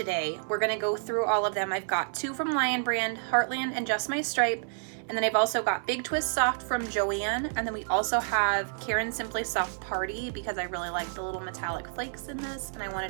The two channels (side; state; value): left; silent; digital silence